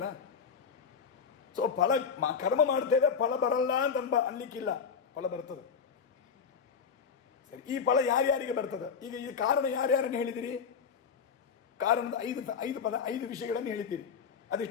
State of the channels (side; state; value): right; quieter; 6.4 dB